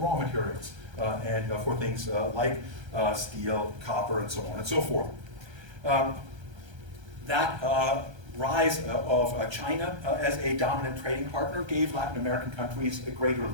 materials, and for things like steel, copper, and so on and so forth. That rise of China as a dominant trading partner gave Latin American countries a greater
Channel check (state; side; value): late; left; 1.3 ms